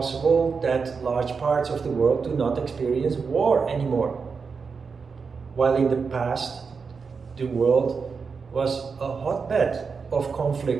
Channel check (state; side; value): quieter; left; 5.3 dB